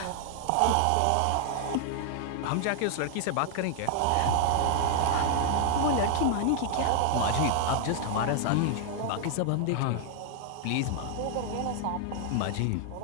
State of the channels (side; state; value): both; different; correlation 0.00